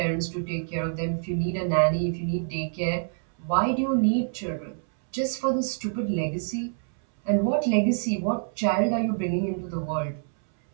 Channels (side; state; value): left; silent; 60 dB below the other